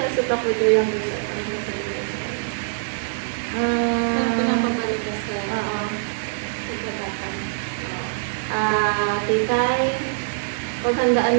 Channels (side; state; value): left; silent; 63 dB below the other